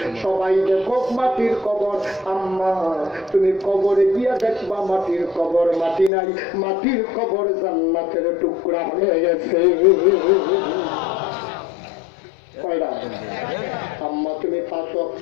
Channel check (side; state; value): right; drops out; at 6.1 s